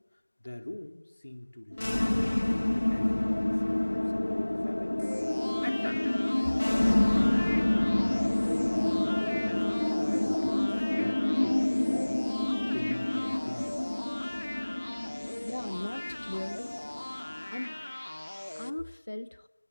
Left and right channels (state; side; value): inverted; both; correlation -1.00